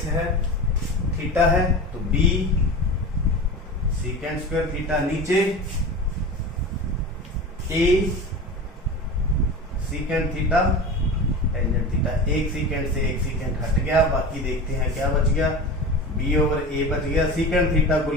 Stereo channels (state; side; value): normal; both; correlation 0.31